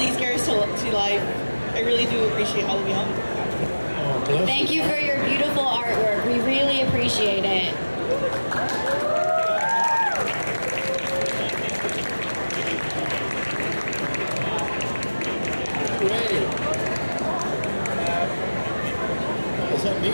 characters to life. I really do appreciate all of y'all. Thank you for your beautiful artwork. We really appreciate it. Great. Is that me?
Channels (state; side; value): inverted; both; correlation -1.00